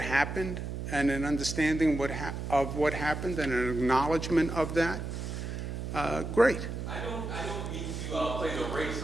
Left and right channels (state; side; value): noise; right; hum, 5 dB below the sound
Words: and an understanding of what happened, and an acknowledgement of that, great. I don't mean to play the race